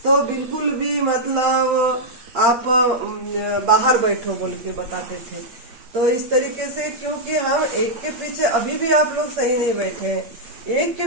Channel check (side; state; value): left; late; 8.6 ms